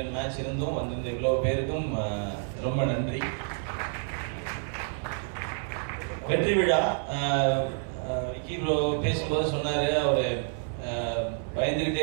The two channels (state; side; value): silent; left; 59 dB below the other